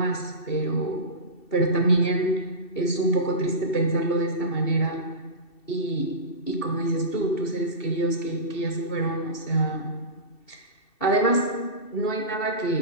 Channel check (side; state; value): right; late; 2.7 ms